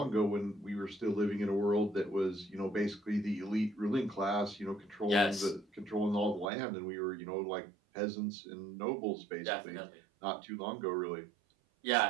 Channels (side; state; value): left; drops out; at 6.5 s